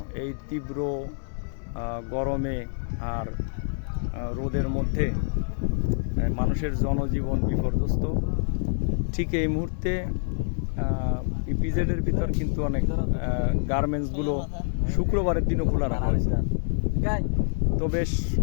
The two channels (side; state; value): right; silent; digital silence